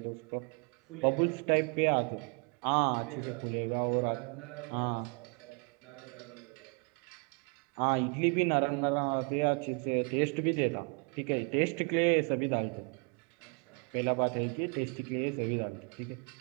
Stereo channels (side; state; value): left; quieter; 36.7 dB